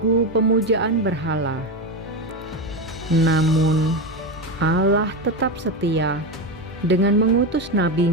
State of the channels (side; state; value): both; normal; correlation 0.15